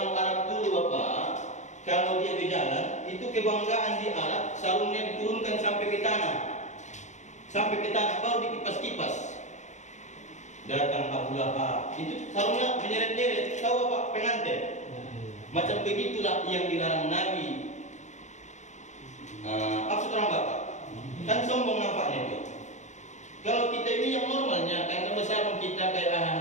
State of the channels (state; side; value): late; right; 0.34 ms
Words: Arab dulu Bapak, kalau dia berjalan, itu kebanggaan di Arab, sarungnya diturunkan sampai ke tanah. Sampai ke tanah, baru dikipas-kipas. Datang Abu Lahab, itu sarungnya menyeret-nyeret. Tahu Bapak, pengantin. Macam begitulah yang dilarang Nabi.